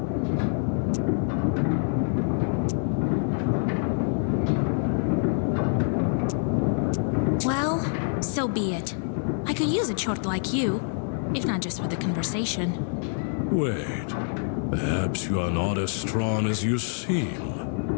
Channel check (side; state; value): right; silent; digital silence